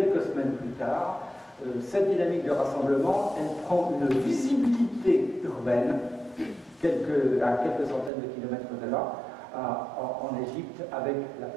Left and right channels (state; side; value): drops out; left; at 8.1 s